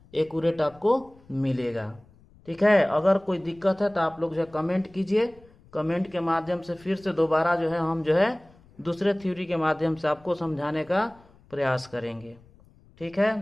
एक्यूरेट आपको मिलेगा। ठीक है, अगर कोई दिक्कत है तो आप लोग जो है कमेंट कीजिए, कमेंट के माध्यम से फिर से दोबारा जो है हम जो है दूसरे थ्योरी के माध्यम से आपको समझाने का प्रयास करेंगे। ठीक है,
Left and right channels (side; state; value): left; noise; rumble, 27 dB below the sound